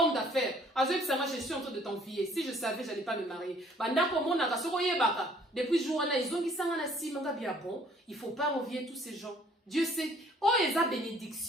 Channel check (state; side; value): normal; both; correlation 0.59